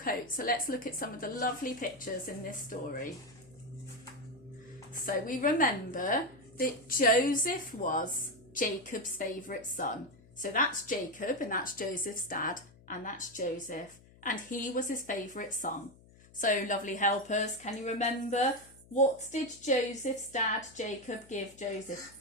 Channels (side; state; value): left; noise; hum, 25 dB below the sound